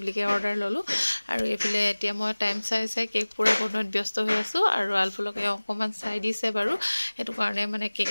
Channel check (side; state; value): both; inverted; correlation -1.00